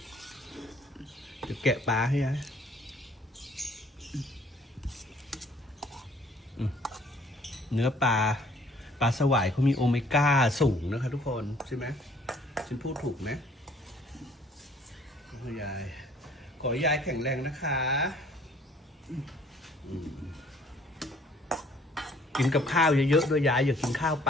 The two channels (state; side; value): normal; both; correlation 0.58